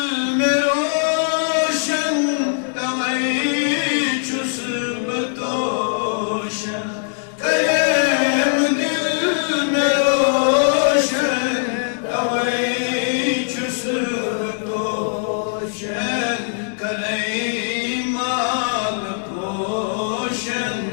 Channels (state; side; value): silent; right; digital silence